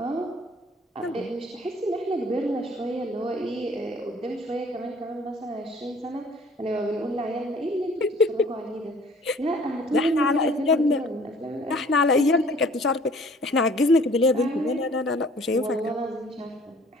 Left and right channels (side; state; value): both; normal; correlation 0.53